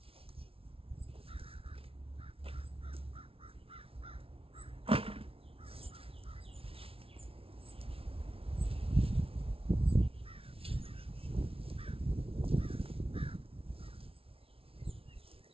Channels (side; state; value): left; late; 0.27 ms